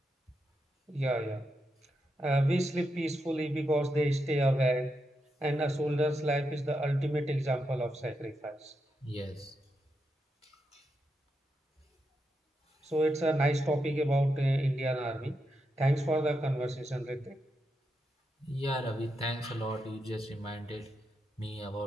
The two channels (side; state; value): both; normal; correlation 0.84